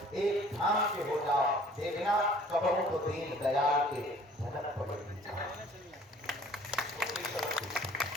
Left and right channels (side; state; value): both; normal; correlation 0.53